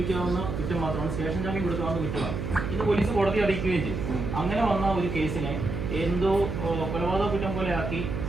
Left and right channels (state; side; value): noise; right; hum, 4 dB below the sound